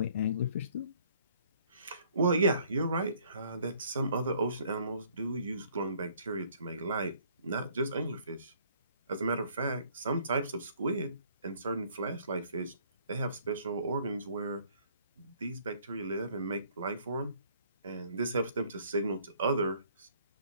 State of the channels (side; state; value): both; inverted; correlation -0.60